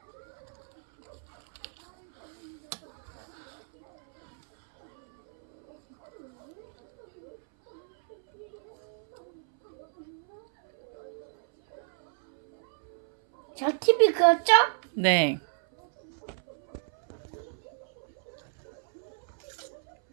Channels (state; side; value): silent; left; 57 dB below the other